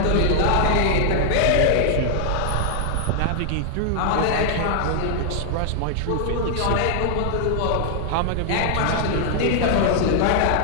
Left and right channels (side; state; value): both; different; correlation 0.00